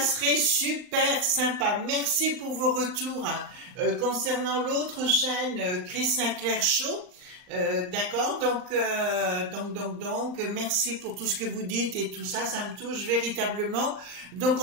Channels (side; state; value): left; late; 39 ms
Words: super sympa. Merci pour vos retours. Concernant l'autre chaîne, Chris Sinclair Show, d'accord, donc, merci pour tout ce que vous dites et tout ça, ça me touche véritablement. Donc,